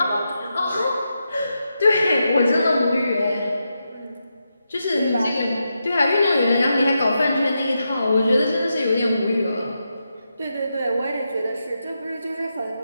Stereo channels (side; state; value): both; inverted; correlation -0.86